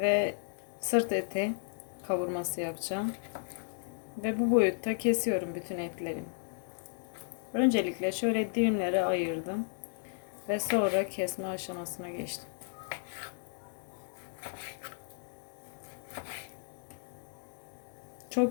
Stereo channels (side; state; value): right; silent; digital silence